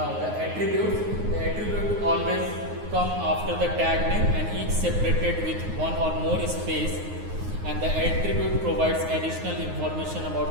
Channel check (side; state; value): left; late; 9.6 ms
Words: the attribute always come after the tag name and each separated with one or more space, and the attribute provides additional information about